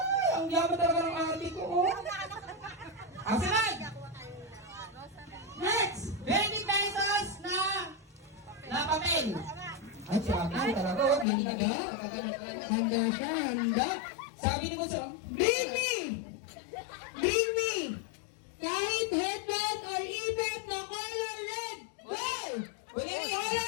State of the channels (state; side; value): drops out; right; at 11.2 s